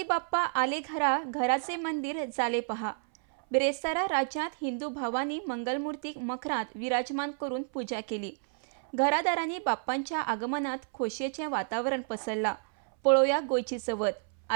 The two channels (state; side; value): silent; left; 58 dB below the other